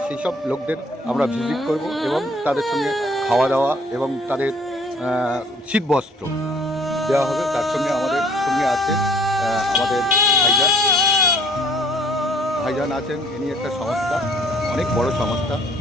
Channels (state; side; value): normal; both; correlation 0.58